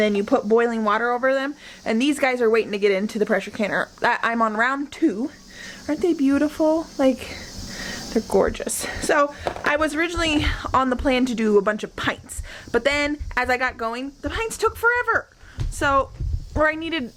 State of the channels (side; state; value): both; identical; correlation 1.00